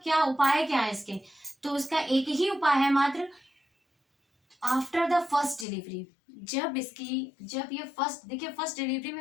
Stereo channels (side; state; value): right; drops out; at 5.7 s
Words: क्या उपाय क्या है इसके, तो उसका एक ही उपाय है मात्र, आफ्टर द फर्स्ट डिलीवरी, जब ये फर्स्ट, देखिए फर्स्ट डिलीवरी